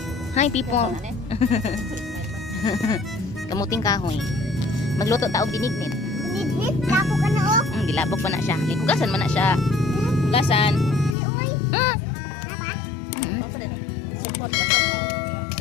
Hi people. Kamuting kahoy. Magluto ta og binignit. Binignet. Labog ka na oh. Gilabog pa na siya. Hugasan man na siya. Hugasan. Uy. Support ka.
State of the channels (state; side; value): drops out; right; at 11.2 s